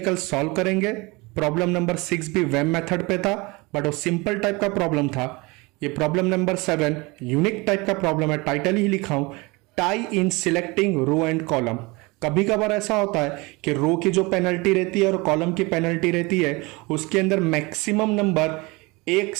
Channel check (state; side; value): quieter; left; 25.1 dB